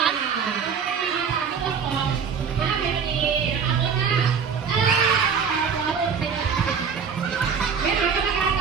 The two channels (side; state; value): left; quieter; 6.4 dB